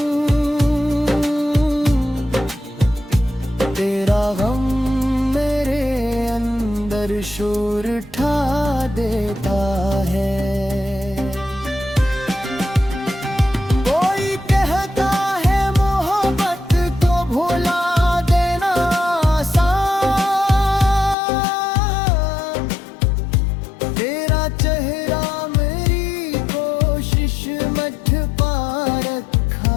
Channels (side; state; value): right; drops out; at 21.2 s